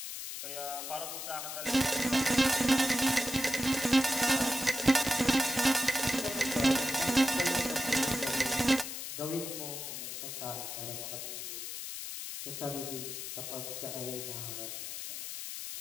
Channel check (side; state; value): left; noise; hiss, 7 dB below the sound